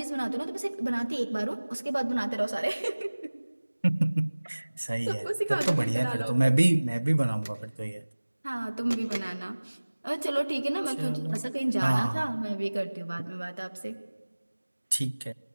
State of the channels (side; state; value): both; inverted; correlation -1.00